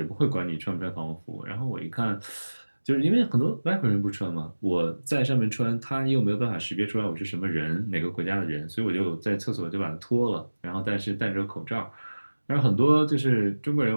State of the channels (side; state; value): both; inverted; correlation -1.00